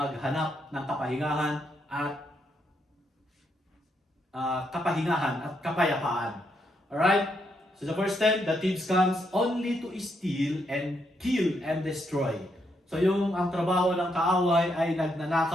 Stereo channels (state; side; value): normal; both; correlation 0.78